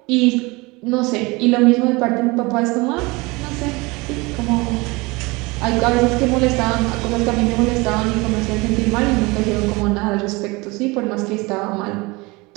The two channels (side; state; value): left; quieter; 24.5 dB